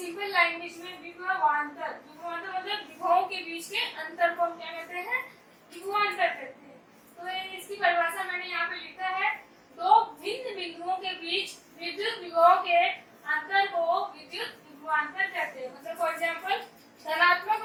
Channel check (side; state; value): both; identical; correlation 1.00